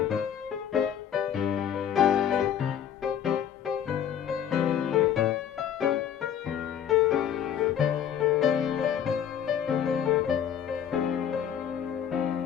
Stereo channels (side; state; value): right; quieter; 9.1 dB